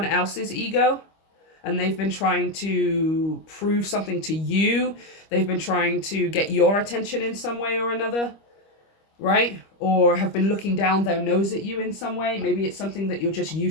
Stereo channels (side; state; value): right; late; 25 ms